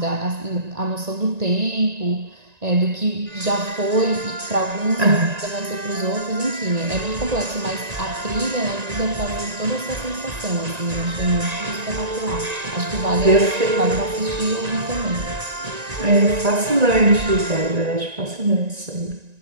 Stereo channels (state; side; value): late; left; 1.9 ms